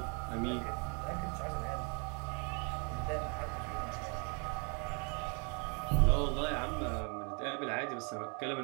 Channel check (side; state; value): left; quieter; 35.8 dB